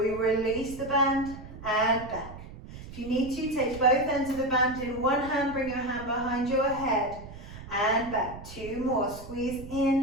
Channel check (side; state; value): right; noise; rumble, 14 dB below the sound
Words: release the band and back. If you need to, take both ends of the band in one hand, bring your hand behind your head and back. 2 more, squeeze